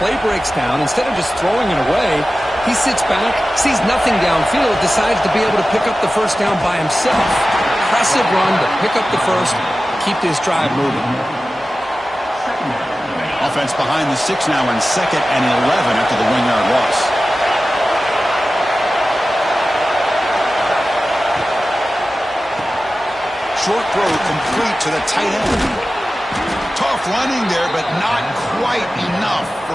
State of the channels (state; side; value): normal; both; correlation 0.95